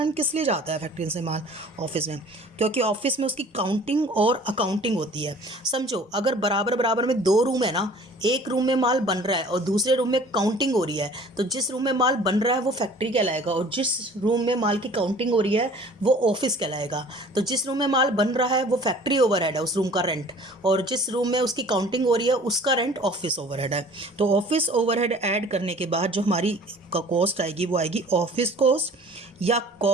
किस लिए जाता है फैक्ट्री से माल ऑफिस में? क्योंकि ऑफिस में उसकी काउंटिंग और अकाउंटिंग होती है। समझो, अगर बराबर बराबर में दो रूम है ना, एक रूम में माल बन रहा है और दूसरे रूम में काउंटिंग हो रही है, तो जिस रूम में माल बन रहा है वो फैक्ट्री कहलाएगा, और जिस रूम में माल की काउंटिंग हो रही है वो ऑफिस कहलाएगा। तो जिस रूम में माल बन रहा है वो फैक्ट्री ओवरहेड है, उस रूम का रेंट, और जिस रूम में उसकी काउंटिंग हो रही है उसका रेंट ऑफिस ओवरहेड है। तो ऑफिस ओवरहेड ऐड करने के बाद जो हमारी कॉस्ट आएगी वो आएगी ऑफिस कॉस्ट या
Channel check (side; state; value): both; normal; correlation 0.49